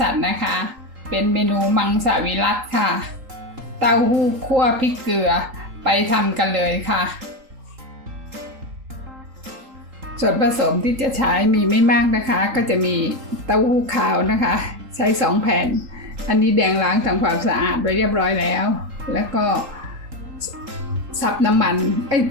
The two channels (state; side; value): late; left; 3.8 ms